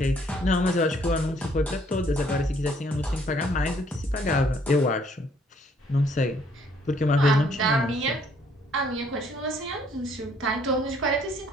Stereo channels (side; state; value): both; normal; correlation 0.64